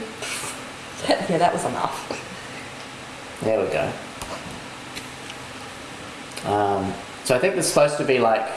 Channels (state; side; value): identical; both; correlation 1.00